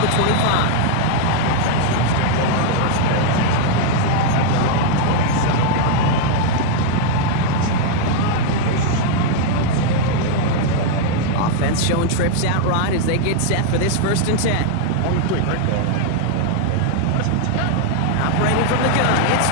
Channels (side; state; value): both; different; correlation 0.00